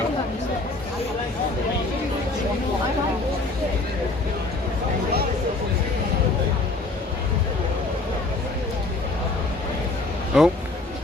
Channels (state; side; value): quieter; right; 3.2 dB